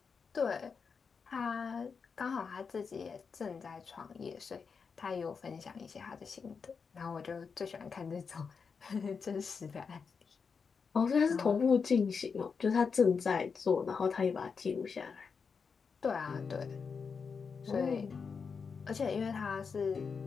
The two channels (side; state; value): right; quieter; 5.6 dB